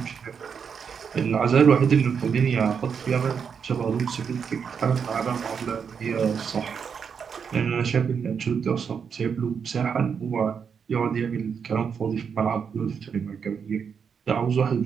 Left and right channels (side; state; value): left; quieter; 6.6 dB